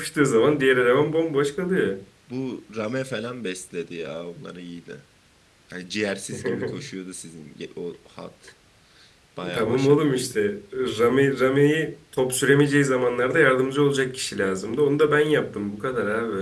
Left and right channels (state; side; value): identical; both; correlation 1.00